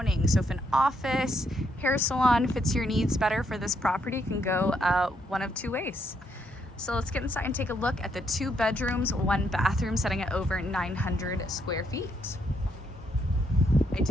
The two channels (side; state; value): both; normal; correlation 0.75